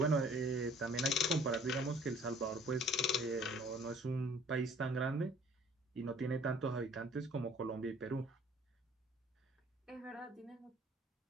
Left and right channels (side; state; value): both; normal; correlation 0.55